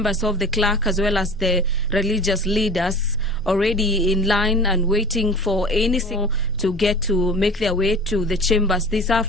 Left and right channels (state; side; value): normal; both; correlation 0.40